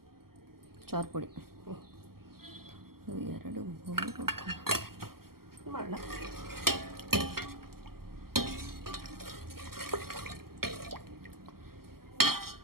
చారుపొడి 2 3 మళ్ళా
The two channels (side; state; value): left; late; 0.93 ms